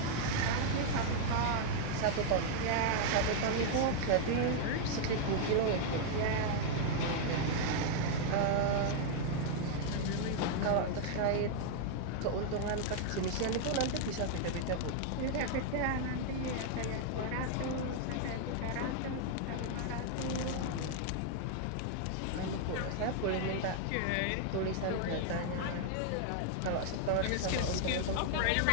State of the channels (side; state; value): both; different; correlation 0.00